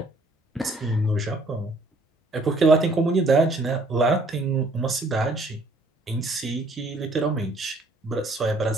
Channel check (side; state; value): both; normal; correlation 0.61